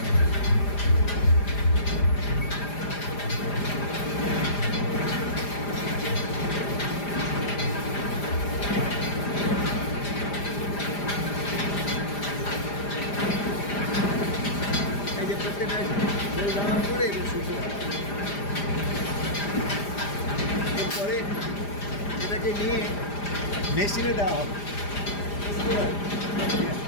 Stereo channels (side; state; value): right; late; 4.9 ms